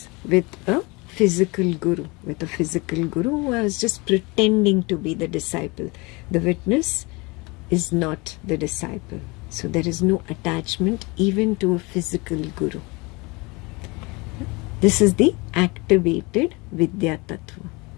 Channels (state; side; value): quieter; right; 26.3 dB